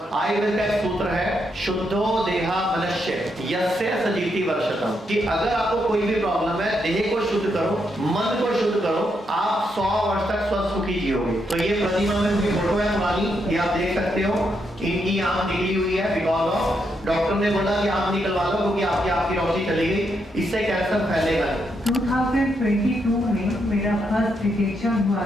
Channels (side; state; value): both; normal; correlation 0.80